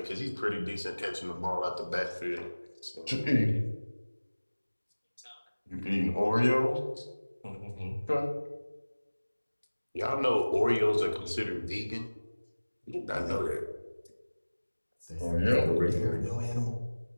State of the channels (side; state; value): both; inverted; correlation -1.00